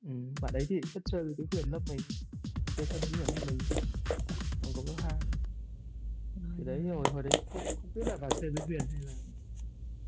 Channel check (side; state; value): both; identical; correlation 1.00